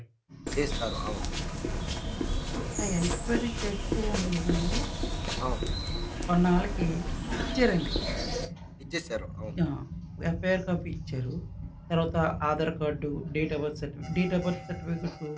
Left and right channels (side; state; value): both; identical; correlation 1.00